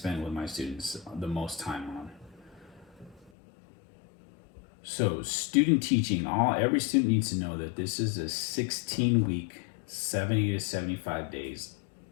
with my students the most time on. So student teaching, every student needs to know that this is a 16-week, 70 to 75 days,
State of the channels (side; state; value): right; drops out; at 3.3 s